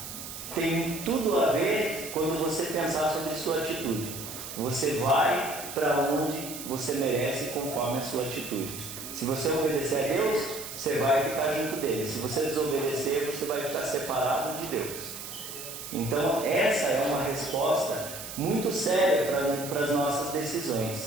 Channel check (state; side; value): noise; right; hiss, 10 dB below the sound